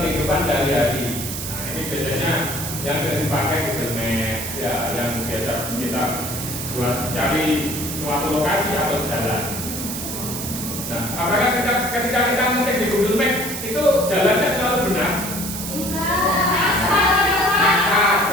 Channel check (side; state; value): right; noise; hiss, 6 dB below the sound